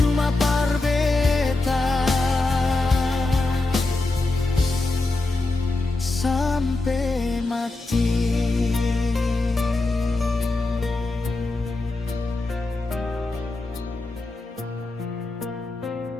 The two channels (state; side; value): quieter; right; 3.1 dB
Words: parbeta sampai mati.